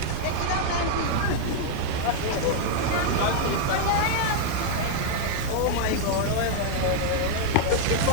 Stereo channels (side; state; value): both; different; correlation 0.00